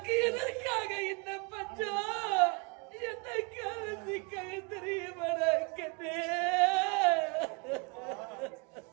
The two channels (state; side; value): quieter; left; 31.8 dB